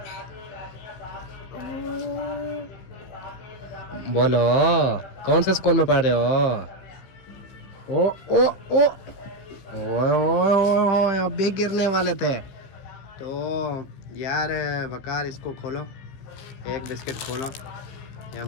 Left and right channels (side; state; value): right; late; 15 ms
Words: बोलो, कौन से स्कूल में पढ़ रहे हो? ओ ओ ओ ओए अब भी गिरने वाले थे। तो यार वकार, इसको खोलो, एक बिस्किट खोलो, ये